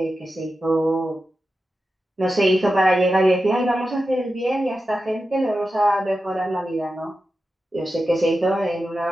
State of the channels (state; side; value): normal; both; correlation 0.91